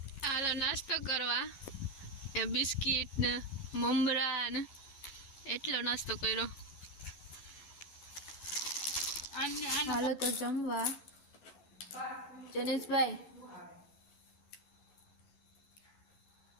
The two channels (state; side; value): late; right; 11 ms